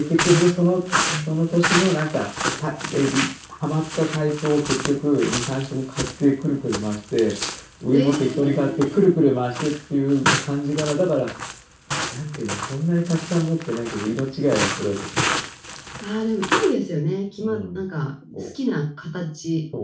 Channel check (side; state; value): both; identical; correlation 1.00